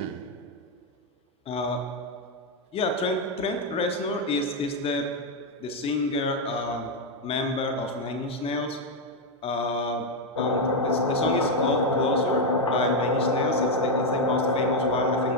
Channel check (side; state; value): both; normal; correlation 0.03